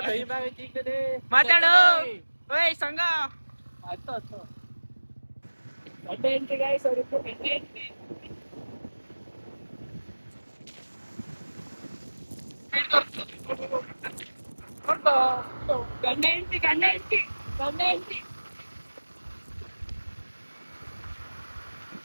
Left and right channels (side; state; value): both; inverted; correlation -1.00